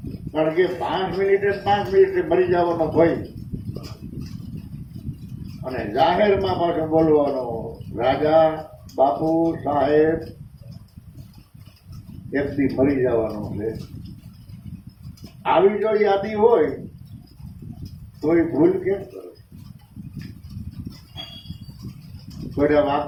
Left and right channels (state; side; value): identical; both; correlation 1.00